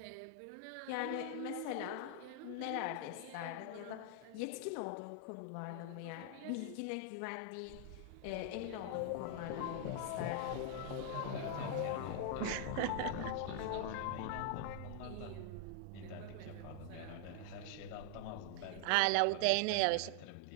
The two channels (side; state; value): both; different; correlation 0.00